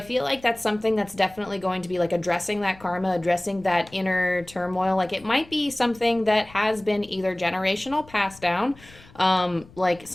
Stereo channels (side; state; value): left; noise; rumble, 23 dB below the sound